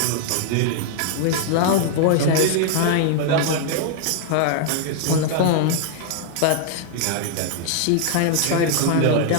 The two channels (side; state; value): both; different; correlation 0.00